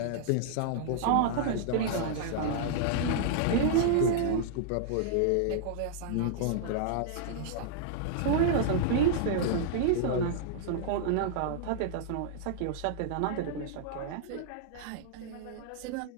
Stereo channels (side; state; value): both; different; correlation -0.01